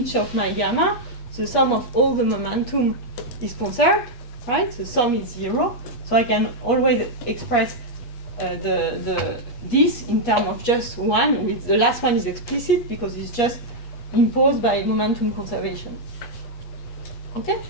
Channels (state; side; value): late; right; 8.4 ms